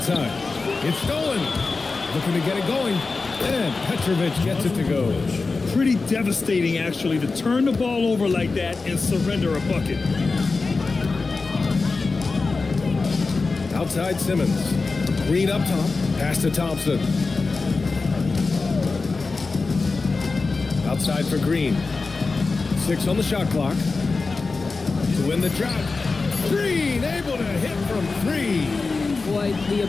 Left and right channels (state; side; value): quieter; right; 4.0 dB